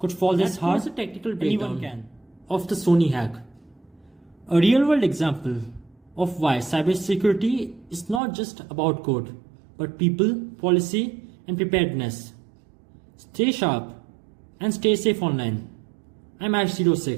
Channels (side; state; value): left; drops out; at 8.2 s